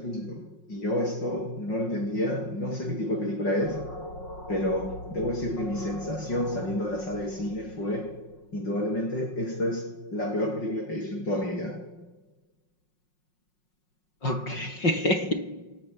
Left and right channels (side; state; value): right; late; 5.5 ms